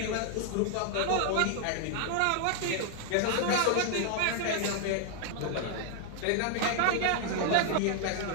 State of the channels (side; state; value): both; different; correlation 0.00